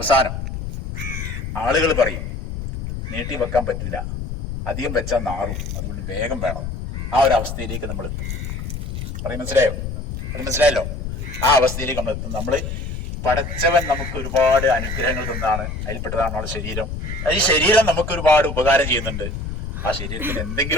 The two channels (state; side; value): noise; left; rumble, 5 dB below the sound